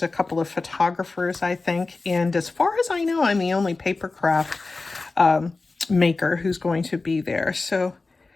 a couple of photographers, I think. And as far as I know, I'm the only paper craft maker who's going to be there. So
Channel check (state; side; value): quieter; right; 3.6 dB